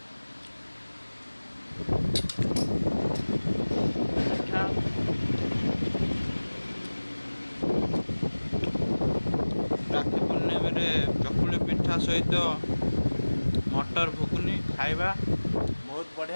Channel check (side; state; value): both; inverted; correlation -1.00